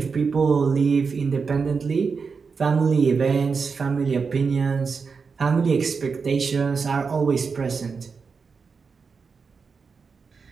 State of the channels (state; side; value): quieter; left; 5.2 dB